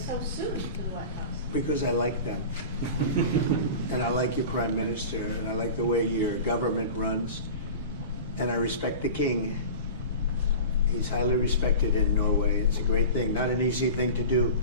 soon to the White House? Because I like them. And I like your Prime Minister, and I like the way your government runs, and I respect the King. He's highly respected in Norway. It's a great thing, not an easy thing to do.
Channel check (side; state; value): both; inverted; correlation -0.34